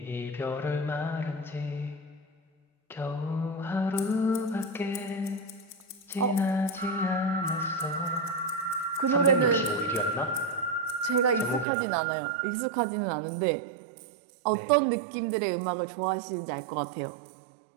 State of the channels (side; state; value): left; drops out; at 11.7 s